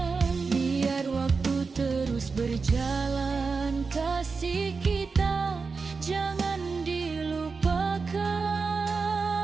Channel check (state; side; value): quieter; left; 4.7 dB